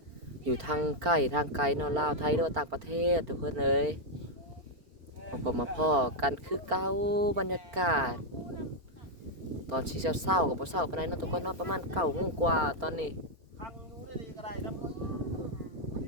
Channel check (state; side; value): late; left; 4.4 ms